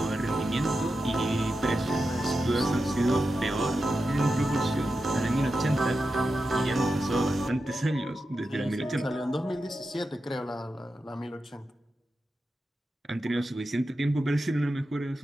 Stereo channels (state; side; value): normal; both; correlation 0.90